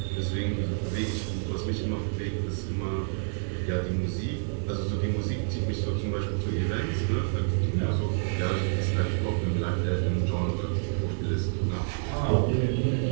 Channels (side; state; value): left; silent; digital silence